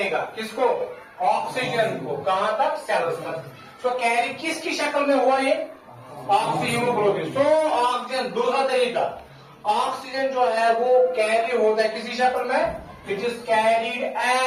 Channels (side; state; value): both; identical; correlation 1.00